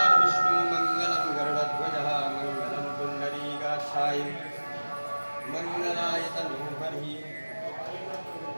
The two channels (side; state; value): both; inverted; correlation -1.00